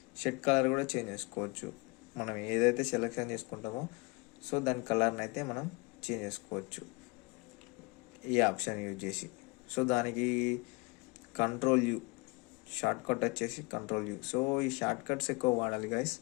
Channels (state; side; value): quieter; right; 27.1 dB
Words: షర్ట్ కలర్ కూడా చేంజ్ చేసుకోవచ్చు. మనం ఏదైతే సెలెక్షన్ చేసుకుంటామో సో దాని కలర్ని అయితే మనం చేంజ్ చేసుకోవచ్చు ఈ ఆప్షన్ యూజ్ చేసి. సో దానికి కంట్రోల్ U, షార్ట్ కట్ వచ్చేసి కంట్రోల్ U. సో ఈ షార్ట్ కట్స్ ఎక్కువ వాడాలి గైస్.